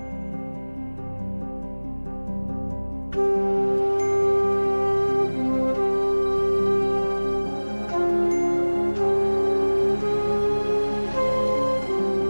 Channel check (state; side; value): inverted; both; correlation -1.00